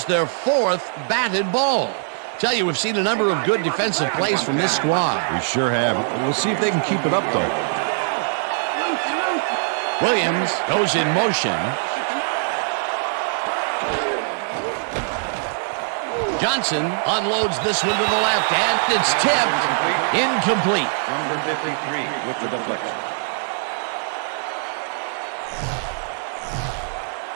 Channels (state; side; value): silent; left; digital silence